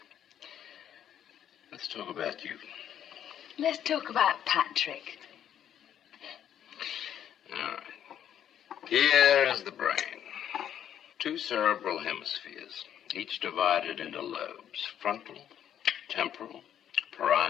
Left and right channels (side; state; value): right; quieter; 10.0 dB